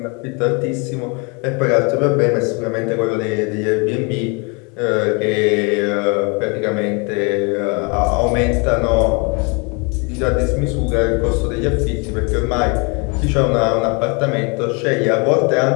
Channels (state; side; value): quieter; right; 32.1 dB